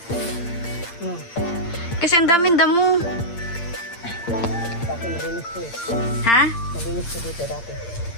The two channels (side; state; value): right; late; 8.7 ms